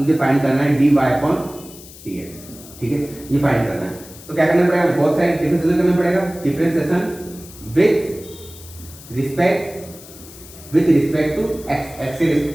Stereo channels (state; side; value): noise; left; hiss, 18 dB below the sound